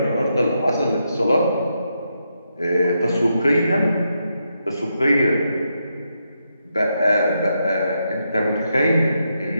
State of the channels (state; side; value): inverted; both; correlation -0.82